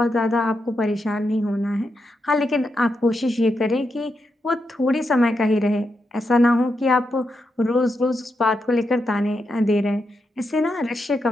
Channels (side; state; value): both; normal; correlation 0.85